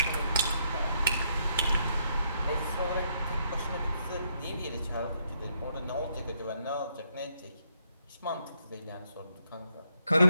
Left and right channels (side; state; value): both; inverted; correlation -0.74